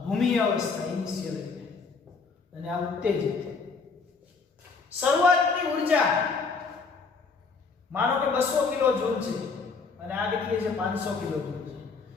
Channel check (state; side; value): quieter; right; 4.7 dB